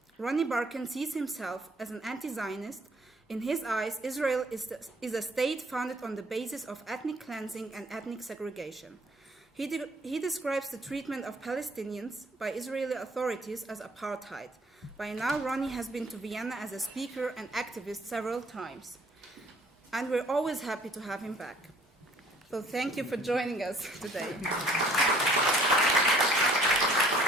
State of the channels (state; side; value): normal; both; correlation 0.58